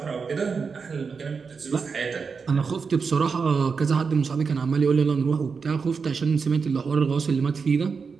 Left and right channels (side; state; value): left; quieter; 5.3 dB